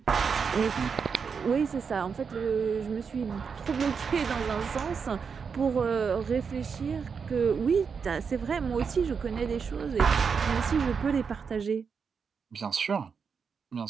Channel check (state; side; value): quieter; left; 6.0 dB